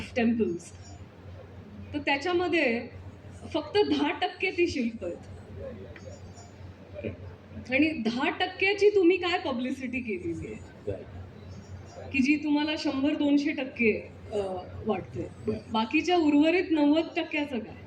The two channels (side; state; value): both; identical; correlation 1.00